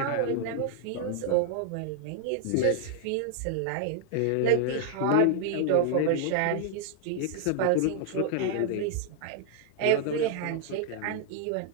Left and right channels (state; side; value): different; both; correlation 0.00